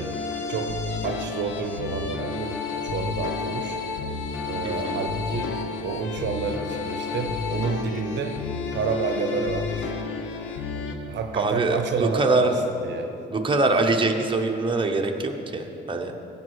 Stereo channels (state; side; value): normal; both; correlation 0.35